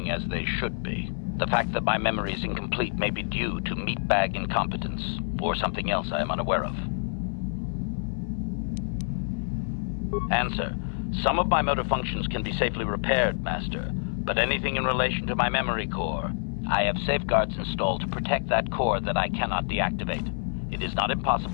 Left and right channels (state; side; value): silent; right; 57 dB below the other